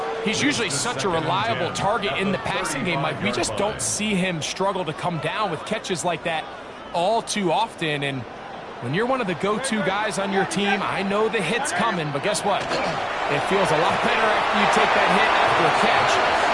He's usually such a reliable target in the passing game, Mike. We just don't see him struggle to come down with catches like that all too often. And when you're one of the go-to guys on your team, I know the hit's coming, but guess what? It feels a lot better after you take that hit after a catch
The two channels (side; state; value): both; identical; correlation 1.00